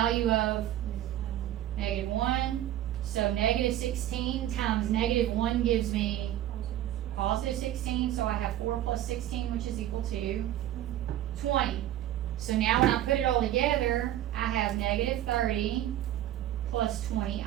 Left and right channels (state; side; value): quieter; left; 12.6 dB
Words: of -1. So -16 times -1 gives me +16, so I have 4 plus 16, which is equal to 20. So now when I put it all together, I have -30 plus